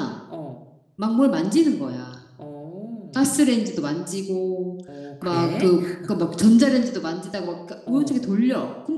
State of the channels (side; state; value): both; identical; correlation 1.00